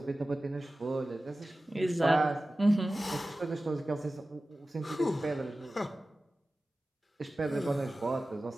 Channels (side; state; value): both; normal; correlation 0.96